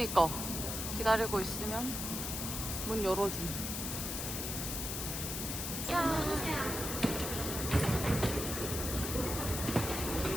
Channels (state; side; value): noise; left; hiss, 3 dB below the sound